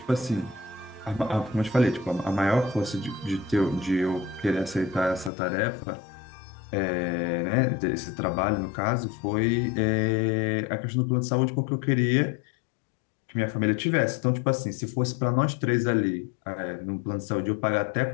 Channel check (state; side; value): drops out; right; at 5.3 s